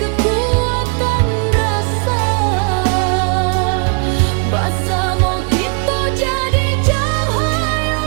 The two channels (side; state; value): left; quieter; 35.3 dB